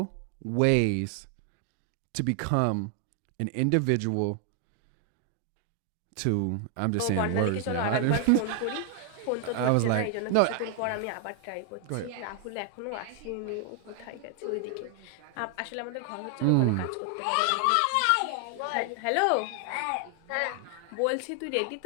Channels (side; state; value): both; different; correlation 0.00